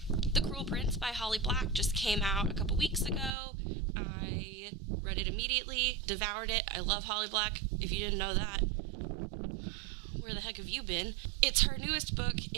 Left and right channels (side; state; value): left; drops out; at 3.4 s